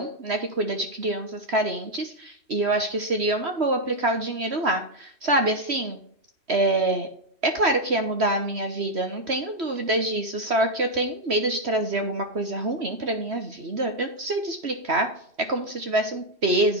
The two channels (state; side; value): late; left; 3.1 ms